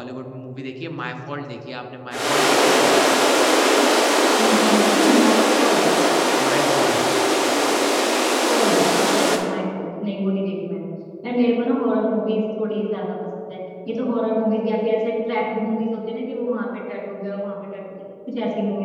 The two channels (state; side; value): identical; both; correlation 1.00